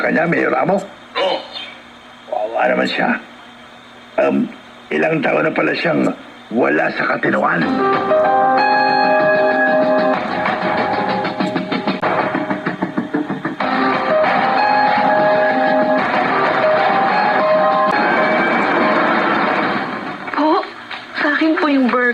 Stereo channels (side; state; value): both; identical; correlation 1.00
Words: kanya, Mayor Ramo? Oo. Wawa naman siya. Ilang taon na pala siyang wala sa katinoan. Po, sa akin po yung